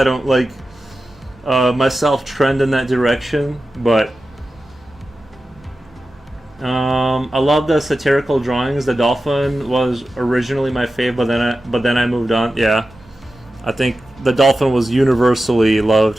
don't like myself trend in that direction, but I love the satirical drawings. The dolphin was originally my fave, but then I moved on. Yeah, I think the dolphin was universally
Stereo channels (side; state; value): both; normal; correlation 0.93